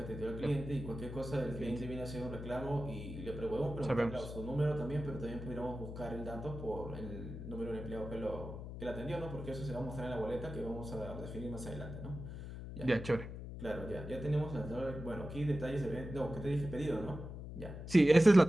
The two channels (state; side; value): noise; left; hum, 9 dB below the sound